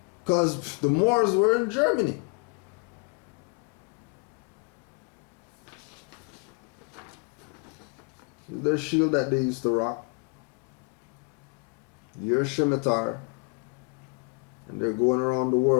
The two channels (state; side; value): quieter; right; 35.7 dB